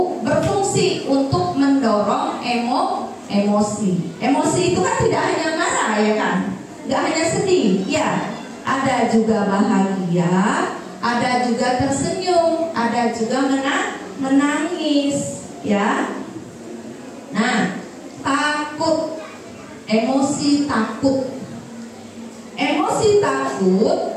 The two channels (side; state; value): both; identical; correlation 1.00